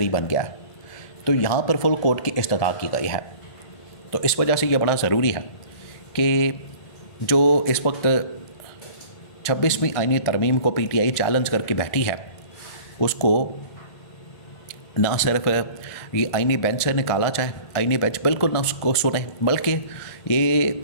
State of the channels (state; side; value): late; right; 1.7 ms